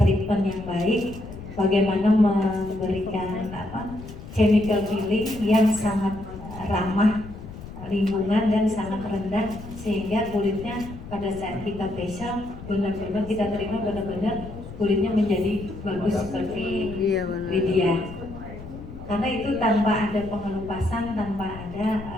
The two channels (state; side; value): noise; left; rumble, 13 dB below the sound